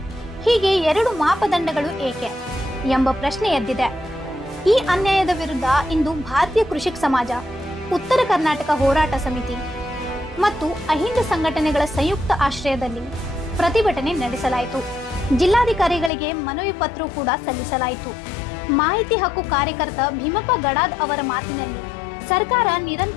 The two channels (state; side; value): drops out; right; at 16.1 s